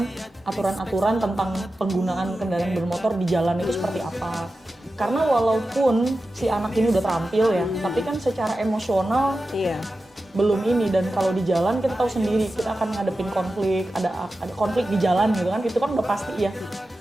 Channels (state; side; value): normal; both; correlation 0.93